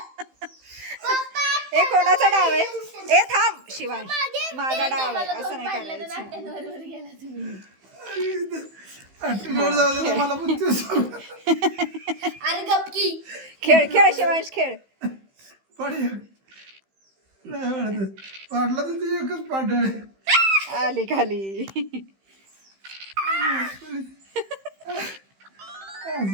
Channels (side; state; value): left; late; 15 ms